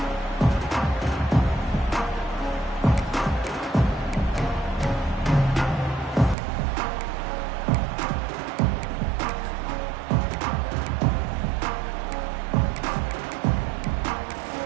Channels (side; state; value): left; drops out; at 6.4 s